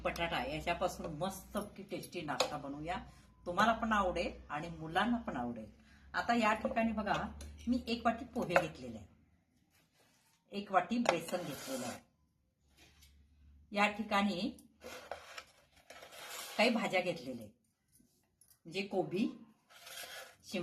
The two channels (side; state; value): both; identical; correlation 1.00